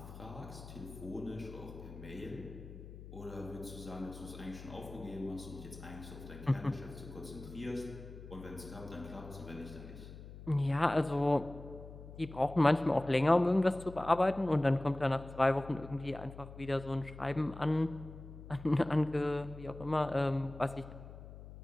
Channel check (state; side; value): noise; left; hum, 14 dB below the sound